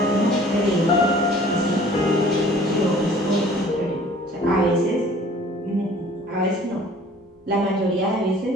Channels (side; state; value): both; normal; correlation 0.51